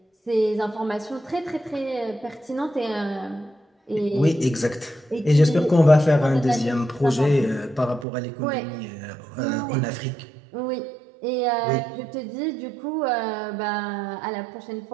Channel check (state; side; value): drops out; left; at 8.1 s